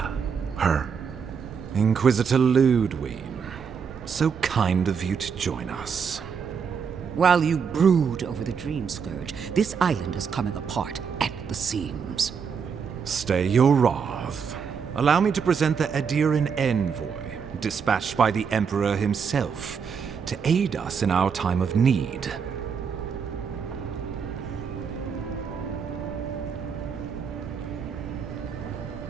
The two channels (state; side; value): quieter; left; 6.4 dB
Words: her? Inquisitor Ludwig. So kind of you to join us. While you brood over the Dream Scourge, this island is coming apart at the seams. Stay your wrath. Allow me to present the Adiran Envoy, dispatched by the Emperor himself, to aid us in our time of need.